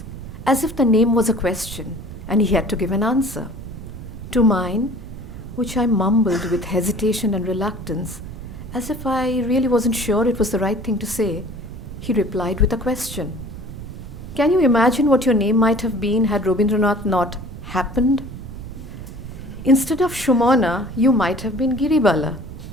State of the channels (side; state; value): right; noise; rumble, 11 dB below the sound